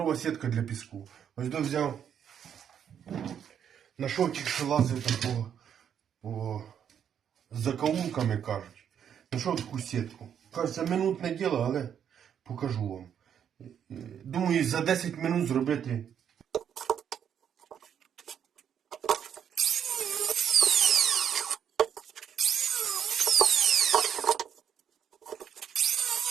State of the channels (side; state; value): left; quieter; 8.6 dB